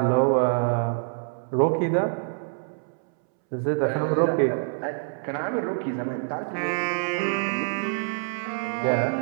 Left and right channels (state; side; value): silent; left; 61 dB below the other